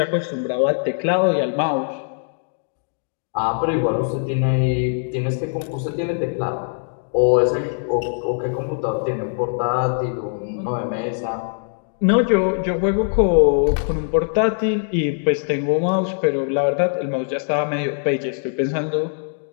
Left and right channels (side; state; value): right; silent; digital silence